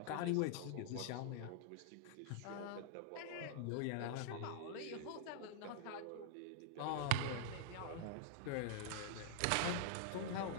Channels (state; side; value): different; both; correlation -0.01